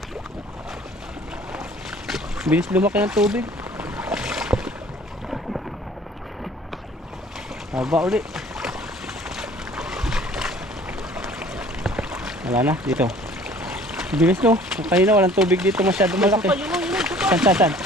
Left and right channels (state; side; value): normal; both; correlation 0.51